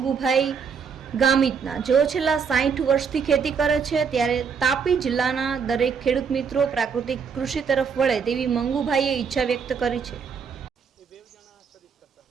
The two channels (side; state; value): left; quieter; 6.2 dB